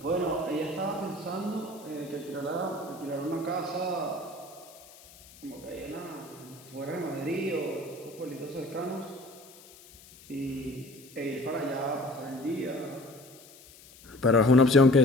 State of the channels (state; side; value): noise; left; hiss, 22 dB below the sound